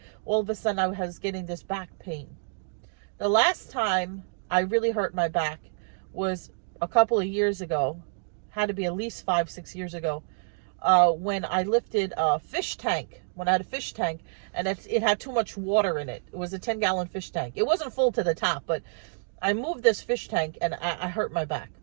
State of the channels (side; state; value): left; silent; digital silence